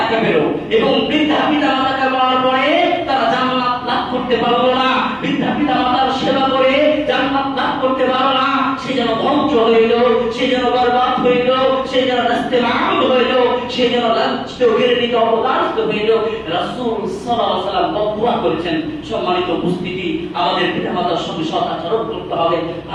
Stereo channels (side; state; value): both; identical; correlation 1.00